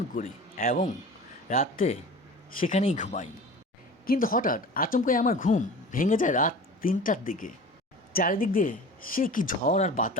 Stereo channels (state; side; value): normal; both; correlation 0.38